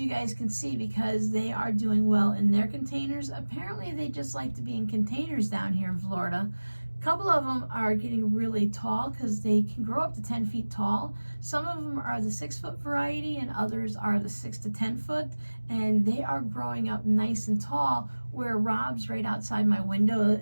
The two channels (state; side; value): inverted; both; correlation -1.00